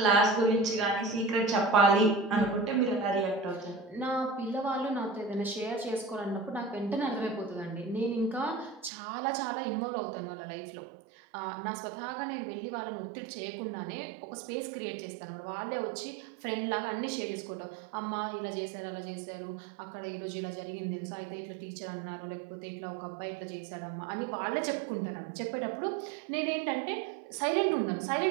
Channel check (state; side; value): drops out; left; at 8.9 s